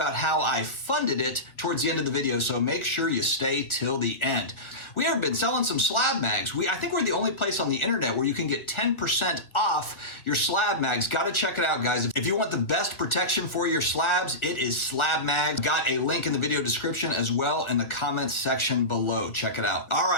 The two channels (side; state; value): right; late; 1.6 ms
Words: how I funded it towards the end of the video, so make sure you stay till the end. We have been selling some SlabMags. I think we're the only place on the internet where you can get 10% off your SlabMags. Got to check it out, guys. If you want the best protection for your slabs, it is SlabMags. Got a link in the video description as well in the comments section below. Check it out. All